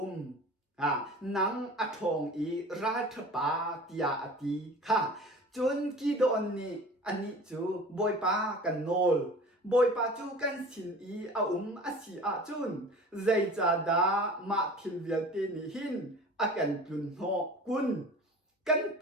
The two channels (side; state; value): both; normal; correlation 0.41